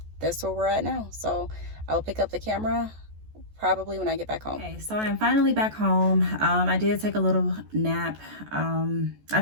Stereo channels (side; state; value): left; late; 14 ms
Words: that's where we're at now. So I'll pick up the camera probably when I get back home. Okay, so I'm finally back home. I did take a little nap. I